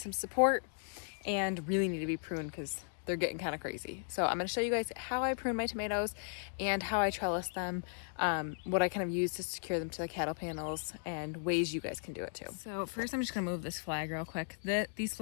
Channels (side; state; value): right; silent; digital silence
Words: support and really need to be pruned because they're getting kind of crazy. So I'm going to show you guys how I prune my tomatoes and how I trellis them, what I kind of use to secure them to the cattle panels, and ways you guys can do it too. So first I'm just going to move this flag real quick. These